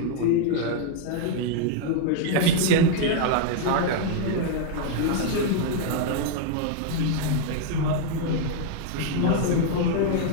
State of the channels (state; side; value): different; both; correlation 0.00